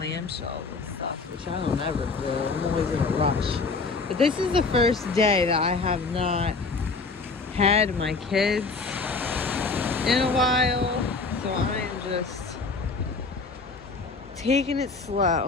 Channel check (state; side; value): quieter; right; 4.1 dB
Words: and stuff, which I don't ever do. I'm always in a rush. But this is the first day that I have not had my kids in a while, so I am just taking it